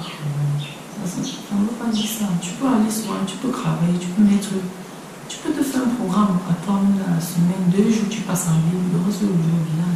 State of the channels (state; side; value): identical; both; correlation 1.00